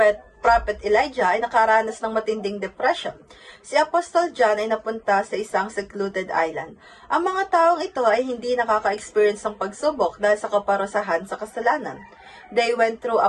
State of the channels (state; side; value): identical; both; correlation 1.00